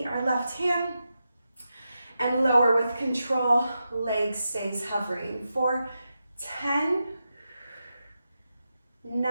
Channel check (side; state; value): both; inverted; correlation -0.89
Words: our left hand and lower with control. Leg stays hovering for 10,